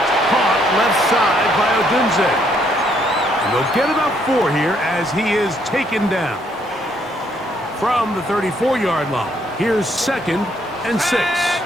caught left side by Odunze. And they'll get about 4 here as he is taken down. From the 34-yard line, here's 2nd and 6.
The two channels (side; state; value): both; normal; correlation 0.70